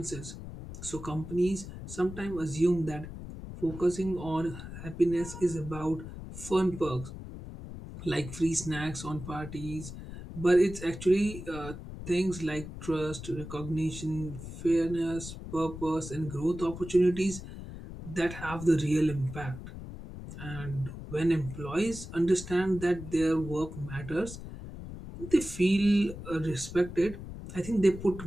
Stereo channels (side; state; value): left; noise; rumble, 11 dB below the sound